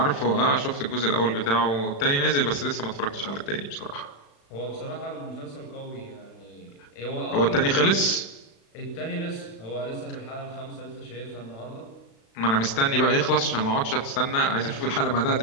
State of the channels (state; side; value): late; right; 36 ms